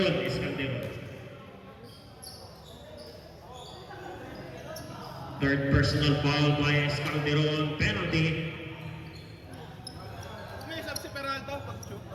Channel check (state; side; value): identical; both; correlation 1.00